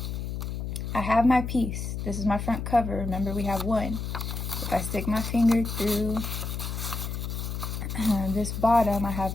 I have my piece. This is my front cover. Remember, we have 1. If I stick my finger through this bottom, I have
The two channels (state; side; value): noise; left; hum, 4 dB below the sound